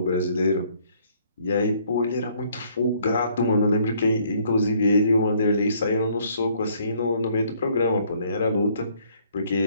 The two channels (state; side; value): inverted; both; correlation -0.64